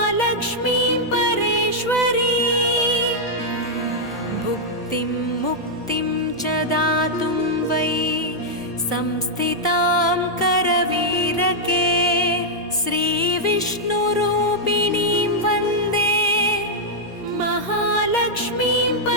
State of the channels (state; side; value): noise; right; hum, 28 dB below the sound